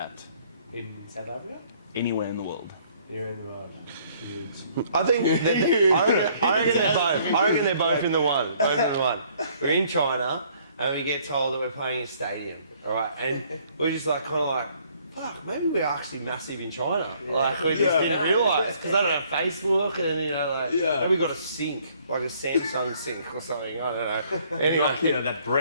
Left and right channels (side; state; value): both; inverted; correlation -0.62